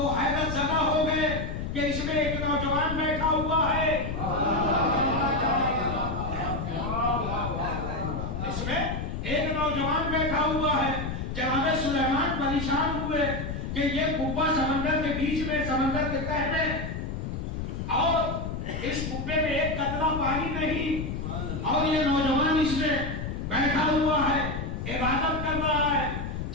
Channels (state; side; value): noise; left; rumble, 4 dB below the sound